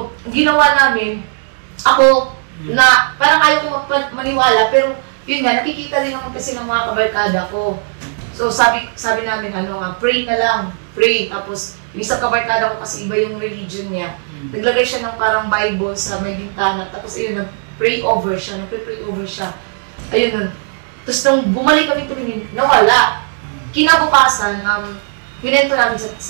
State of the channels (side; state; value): left; silent; 60 dB below the other